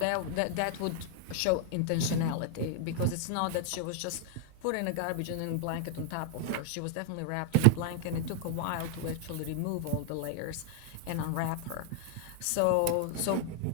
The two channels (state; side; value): different; both; correlation 0.00